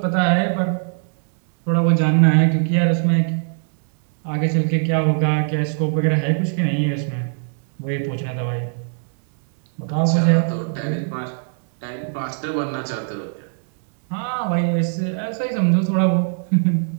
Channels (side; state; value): left; silent; 62 dB below the other